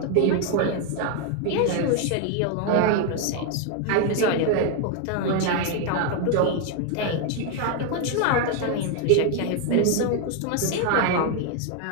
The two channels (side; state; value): both; different; correlation 0.01